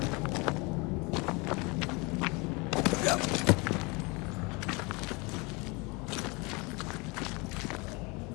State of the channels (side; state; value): right; quieter; 27.7 dB